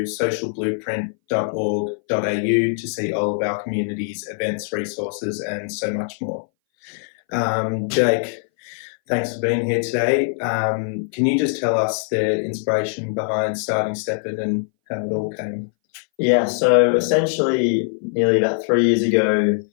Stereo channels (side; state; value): right; silent; 61 dB below the other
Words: socialblueprint.org.au to see all of our communities, events, resources, and so much more. Jake, thanks for being here today. Can you just tell us the inspiration behind starting Steppen and how it all came? Yeah, so essentially nearly about 3 years ago,